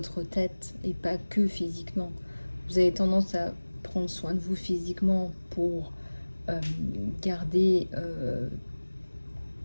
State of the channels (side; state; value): both; inverted; correlation -1.00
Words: tête et pas que physiquement. Vous avez tendance à prendre soin de vous physiquement pour garder